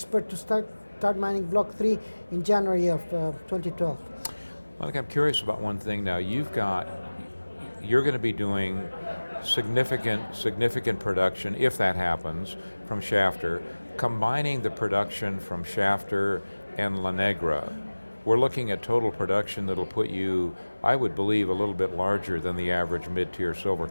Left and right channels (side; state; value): both; inverted; correlation -1.00